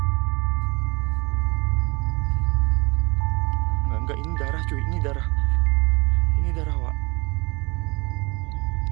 Enggak, ini darah cuy, ini darah. Ini darah, Wak.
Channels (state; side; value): quieter; left; 26.3 dB